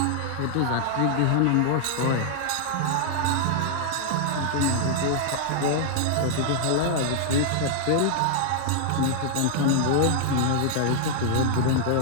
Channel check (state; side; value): different; both; correlation -0.01